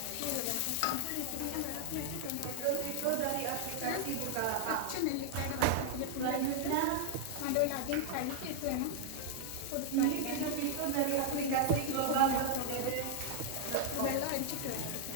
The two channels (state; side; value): different; both; correlation -0.01